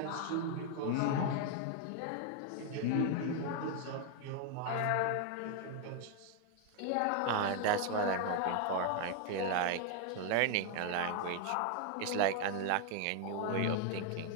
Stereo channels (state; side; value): different; both; correlation 0.01